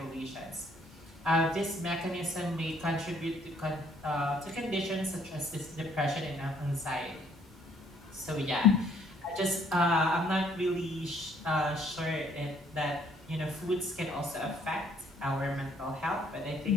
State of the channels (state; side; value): normal; both; correlation 0.64